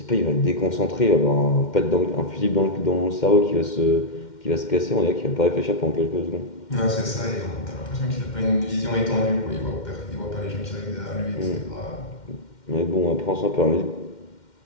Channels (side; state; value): right; late; 2.1 ms